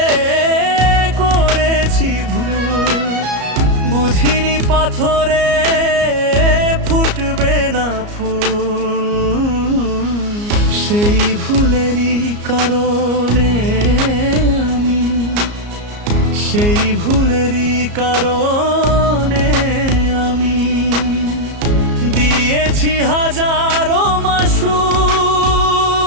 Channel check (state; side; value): late; left; 34 ms